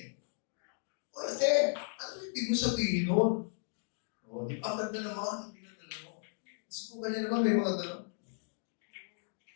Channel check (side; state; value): right; silent; 54 dB below the other